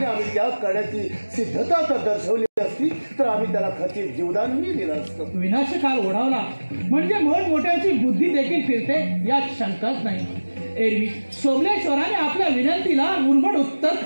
आम्ही त्या करण्याची सिद्धता जर दर्शवली असती तर आम्ही त्याला खचित जीवदानही दिलं असतं. विनाशकाल ओढावला म्हणजे मोठमोठ्यांची बुद्धी देखील फिरते यात शंकाच नाही. एरवी सोमलेश्वराने आपल्या विनंतीला उर्मट उत्तर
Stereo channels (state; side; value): inverted; both; correlation -1.00